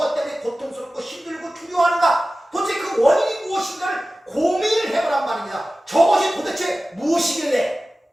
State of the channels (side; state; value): both; normal; correlation 0.96